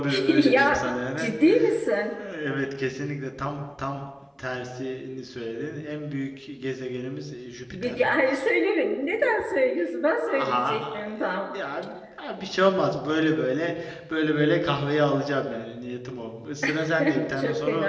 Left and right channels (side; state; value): both; identical; correlation 1.00